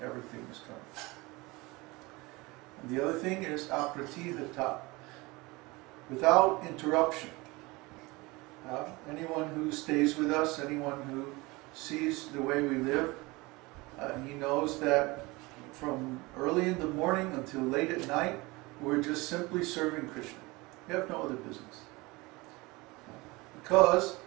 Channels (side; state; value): left; quieter; 23.3 dB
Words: everything is coming. And the other thing is apratihata, without interruption. Anyone who stays with us, anyone who sees the way we live, he knows that from early in the morning until late at night, we're just simply serving Krishna. We have no other business. Because